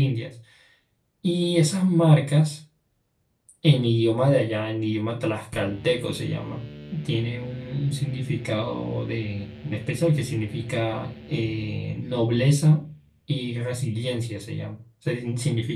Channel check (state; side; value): identical; both; correlation 1.00